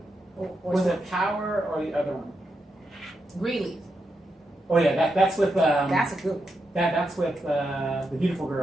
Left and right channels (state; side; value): normal; both; correlation 0.85